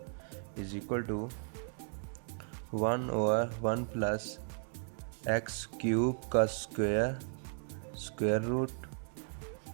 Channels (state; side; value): silent; left; 54 dB below the other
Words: is equal to 1/1 plus x cube का square root